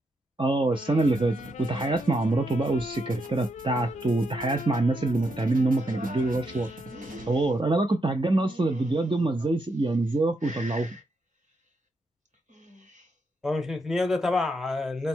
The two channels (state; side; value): normal; both; correlation 0.80